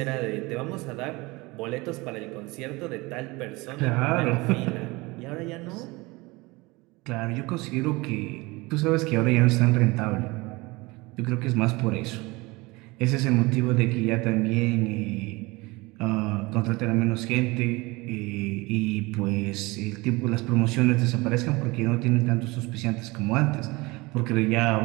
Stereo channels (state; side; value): quieter; left; 23.4 dB